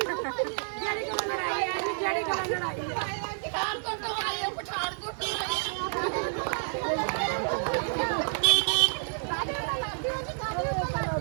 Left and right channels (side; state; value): left; silent; 58 dB below the other